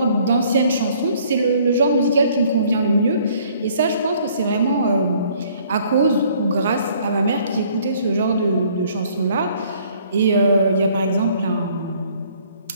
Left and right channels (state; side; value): inverted; both; correlation -0.60